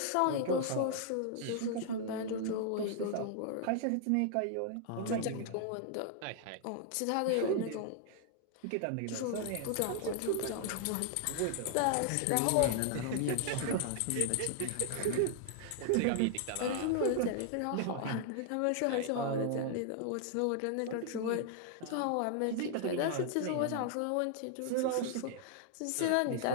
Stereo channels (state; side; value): different; both; correlation 0.00